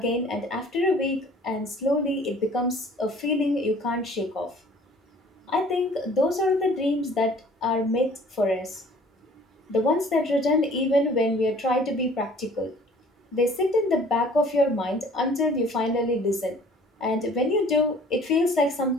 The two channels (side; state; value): both; normal; correlation 0.52